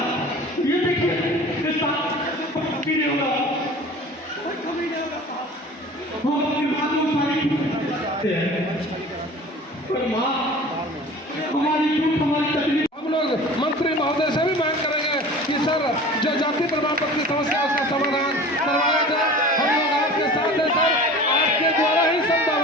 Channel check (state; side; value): normal; both; correlation 0.41